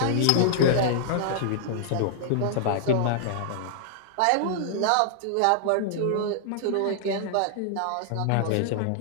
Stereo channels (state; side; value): different; both; correlation -0.01